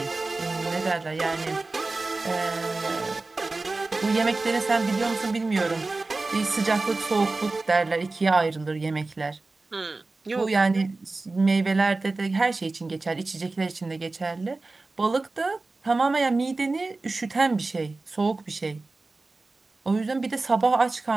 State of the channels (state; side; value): quieter; left; 3.4 dB